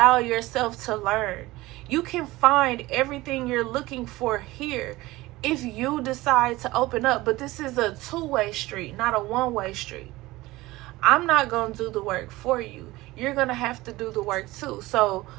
yourself to learn. You can find everything you're looking for here if you decide to open up. But this is a 2-way street, not a 1-way street. I'm not gonna do the work for you. You're gonna have to do the work too. So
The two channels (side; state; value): left; quieter; 19.2 dB